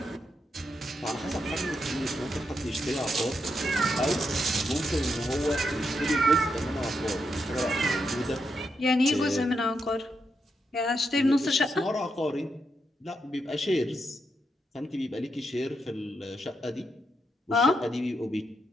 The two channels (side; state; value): both; normal; correlation 0.82